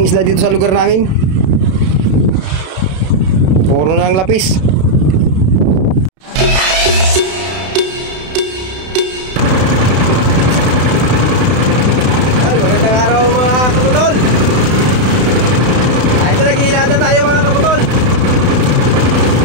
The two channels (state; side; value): late; left; 32 ms